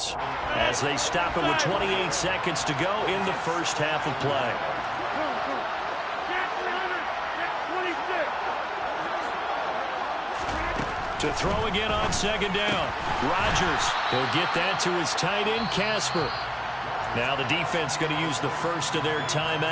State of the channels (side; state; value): both; identical; correlation 1.00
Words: as they stop it with 28 seconds to go in the first half of play. To throw again on second down. Rodgers, he'll get that to his tight end, Casper. Now the defense going to use the first of their